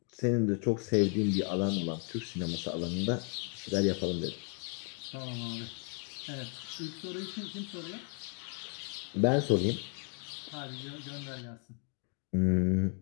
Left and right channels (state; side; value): quieter; right; 35.5 dB